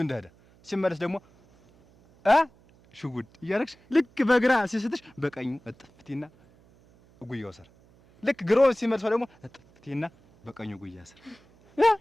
እንደሄደ ሲመለስ ደግሞ ሽጉድ እያደረግሽ ልክ በግራ ሲስትሽ በቀኙ እጥፍቴና ጉያው ስር ልክ ግሮ ሲመልሰው ደግሞ እጥፍቴና በቀኙ ጉያ ስር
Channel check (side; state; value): right; noise; hum, 29 dB below the sound